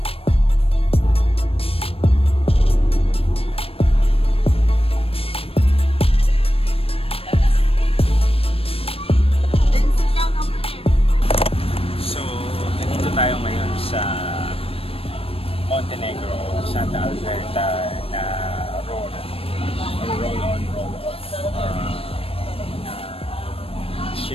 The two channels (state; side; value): late; right; 0.28 ms